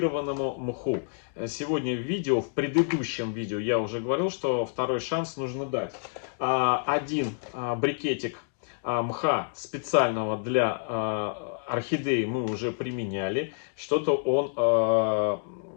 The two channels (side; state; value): right; silent; digital silence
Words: мху. Сегодня в предыдущем видео я уже говорил, что второй шанс нужно дать. Один брикетик мха специального для орхидеи мы уже применяли. Что-то он